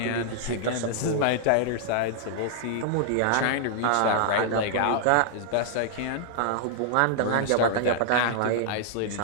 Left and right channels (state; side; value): different; both; correlation -0.01